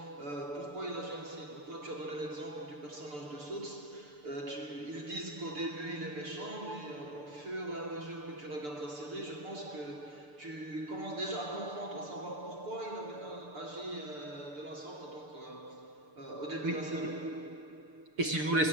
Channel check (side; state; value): left; late; 6.8 ms